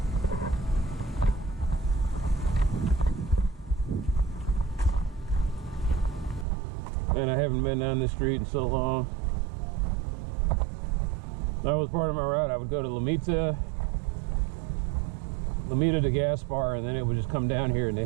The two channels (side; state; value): left; drops out; at 6.5 s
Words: And I haven't been down this street in so long. That was part of my route. I would go to Lamita to Gaspar, and then it would just come down here, and